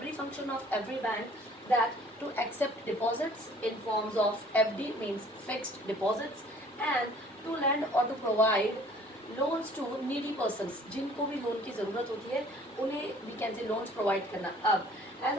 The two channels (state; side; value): normal; both; correlation 0.54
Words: function of every bank, that to accept deposits in forms of FD means fixed deposits, and to lend or to provide loans to needy persons, जिनको भी loan की ज़रूरत होती है उन्हें we can say loans provide करना. अब as